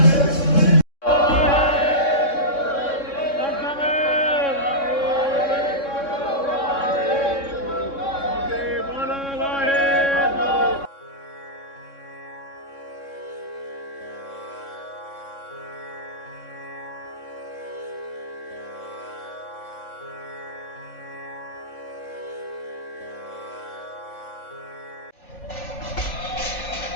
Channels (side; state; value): right; late; 3.6 ms